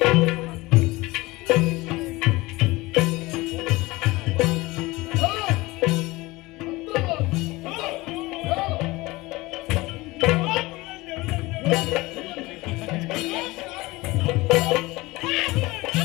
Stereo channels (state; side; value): quieter; right; 21.1 dB